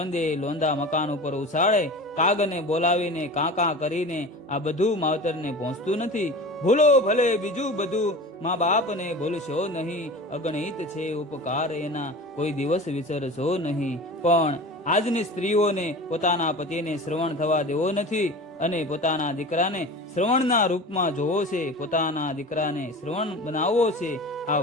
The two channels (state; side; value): normal; both; correlation 0.35